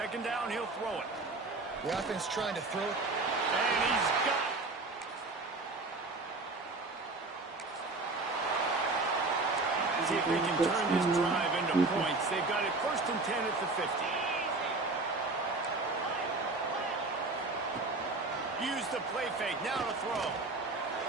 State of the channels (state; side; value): quieter; left; 3.4 dB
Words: down, he'll throw it. The offense trying to throw it. And he's got it. See if they can turn this drive into points. They've got it first and 10 at the 50. Use the play fake. Now to throw.